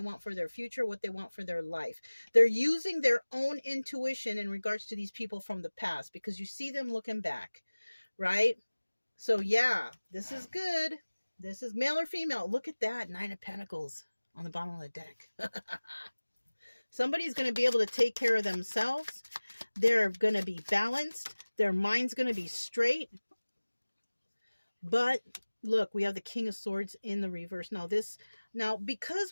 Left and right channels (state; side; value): inverted; both; correlation -1.00